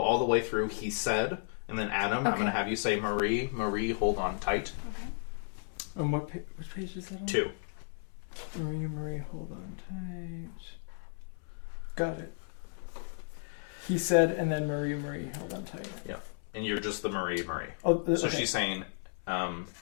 all the way through he said, and then Adam, I'm going to have you say Marie. Marie, hold on tight. And which page is that on? 2. Marie, hold on tight. Got it. He said, and then Marie, hold on tight. Yeah. And you're just the Marie. Oh, So okay. she's saying,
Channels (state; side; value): silent; right; 55 dB below the other